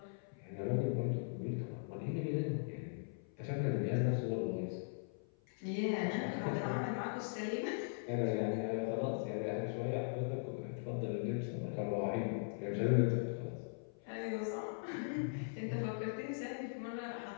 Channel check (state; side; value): silent; right; 51 dB below the other